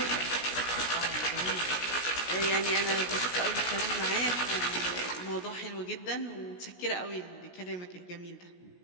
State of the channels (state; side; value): late; right; 17 ms